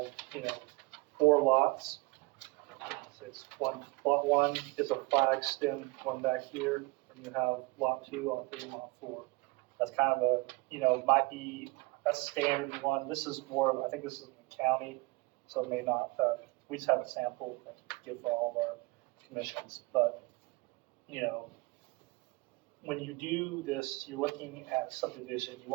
4 lots. So it's lot 1 is a flag stem one back here, and you have lot 2, lot 3, and lot 4. That's kind of might be a standard one. This is more, I think this is in the county, so it may not, we just have a sample that we give for all of our commissions. But, when you do this, you're looking at a subdivision, you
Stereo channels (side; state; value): left; quieter; 25.0 dB